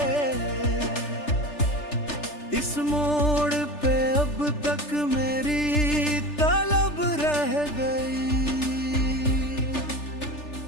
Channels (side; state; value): right; late; 3.4 ms